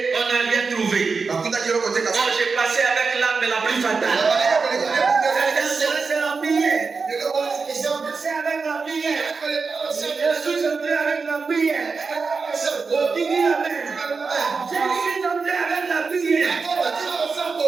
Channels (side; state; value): left; quieter; 4.7 dB